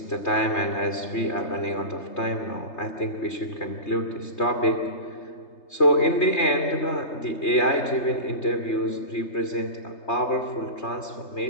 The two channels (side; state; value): right; late; 3.2 ms